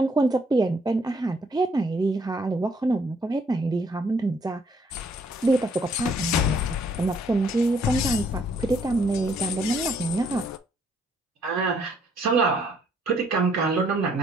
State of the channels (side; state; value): both; normal; correlation 0.66